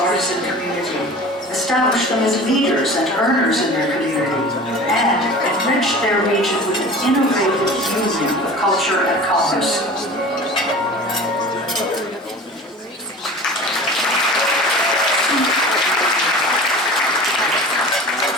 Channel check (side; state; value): both; normal; correlation 0.38